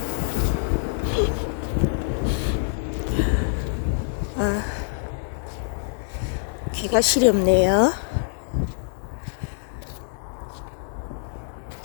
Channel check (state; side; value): silent; right; digital silence